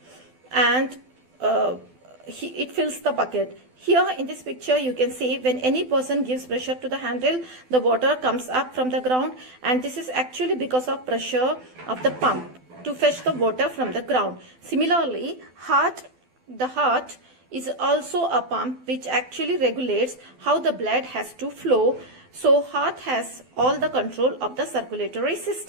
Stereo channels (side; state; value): left; late; 12 ms